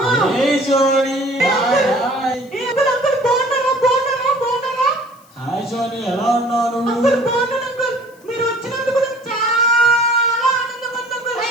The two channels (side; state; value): left; noise; hiss, 30 dB below the sound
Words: hey Johnny, hi hi. Uncle uncle బాగున్నారా? బాగున్నారా? బాగున్నారా? హాయ్ జానీ, ఎలా ఉన్నాను? అంకుల్ బాగున్నాను అంకుల్. మీరు వచ్చినందుకు నాకు చాలా ఆనందంగా ఉంది అంకుల్.